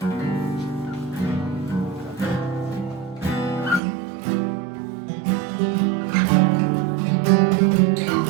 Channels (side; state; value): left; drops out; at 3.8 s